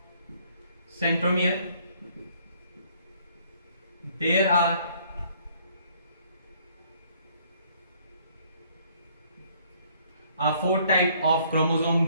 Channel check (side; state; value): both; inverted; correlation -0.63